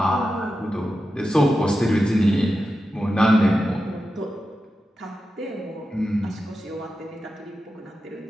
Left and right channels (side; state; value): both; normal; correlation 0.91